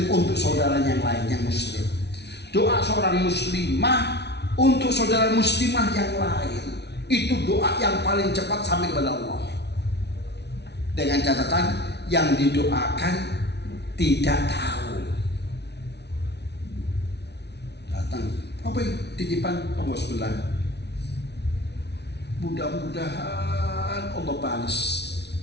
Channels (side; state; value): right; late; 0.49 ms